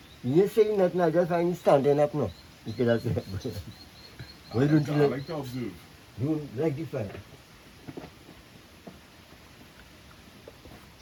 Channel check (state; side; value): identical; both; correlation 1.00